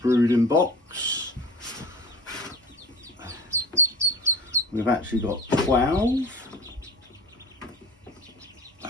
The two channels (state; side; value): normal; both; correlation 0.37